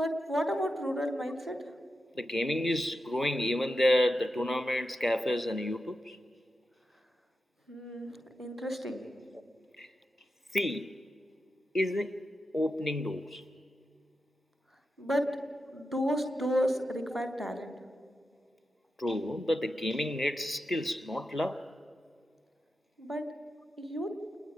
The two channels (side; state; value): both; normal; correlation 0.89